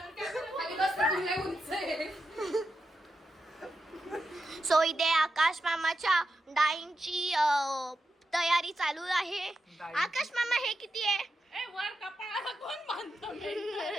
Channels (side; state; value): both; normal; correlation 0.88